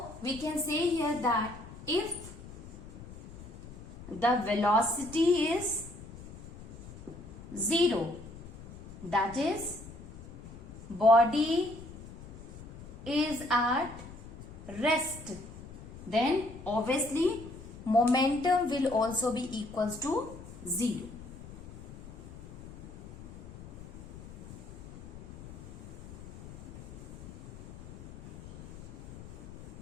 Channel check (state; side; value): noise; left; rumble, 14 dB below the sound